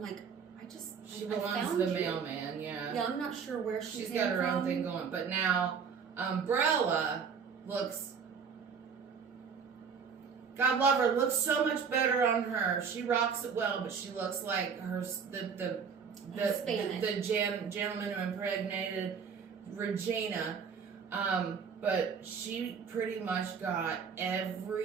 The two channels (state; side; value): quieter; left; 6.2 dB